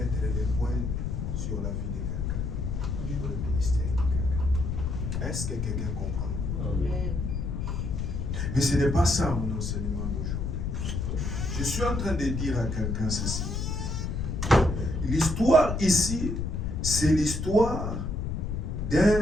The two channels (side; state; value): left; noise; rumble, 2 dB below the sound